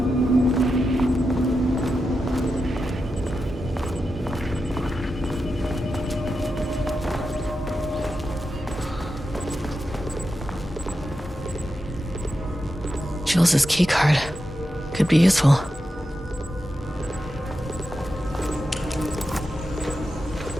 Jules's keycard. Could be useful.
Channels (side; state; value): both; normal; correlation 0.89